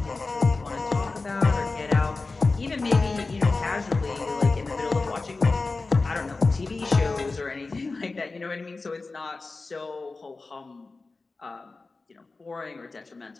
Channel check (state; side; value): quieter; right; 3.7 dB